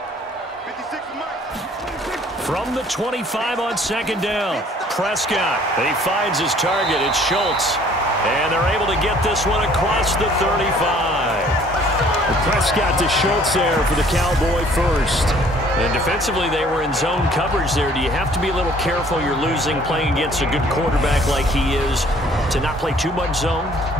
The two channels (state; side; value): normal; both; correlation 0.57